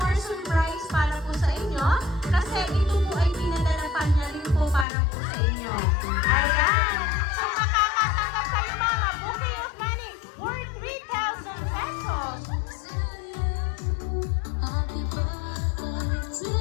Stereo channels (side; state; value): right; drops out; at 4.9 s